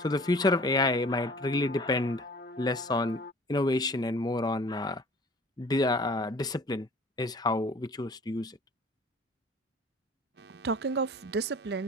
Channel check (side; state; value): both; normal; correlation 0.48